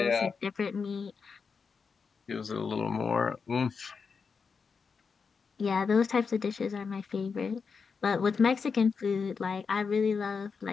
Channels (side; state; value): right; quieter; 5.4 dB